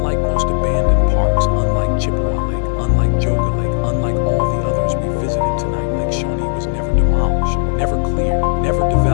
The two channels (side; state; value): right; silent; digital silence